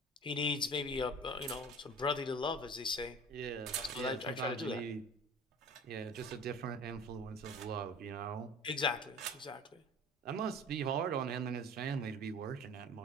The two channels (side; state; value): both; normal; correlation 0.41